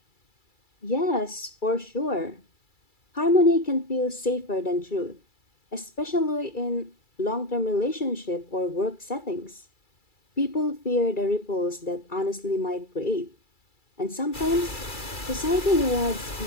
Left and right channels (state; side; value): late; right; 2.3 ms